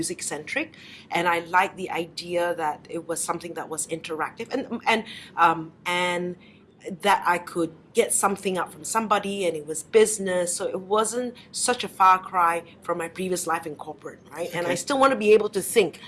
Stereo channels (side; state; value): both; identical; correlation 1.00